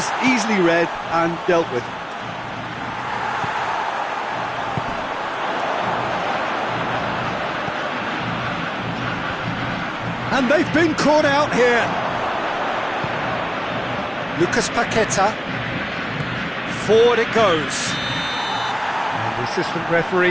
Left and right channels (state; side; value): identical; both; correlation 1.00